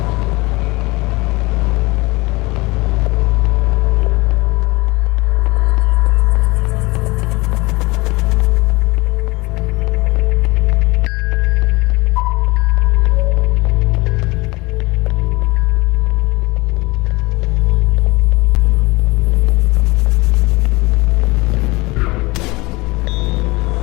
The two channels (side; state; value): right; quieter; 23.3 dB